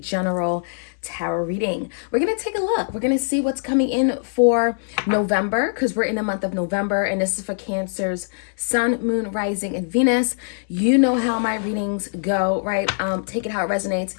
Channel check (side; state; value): right; silent; digital silence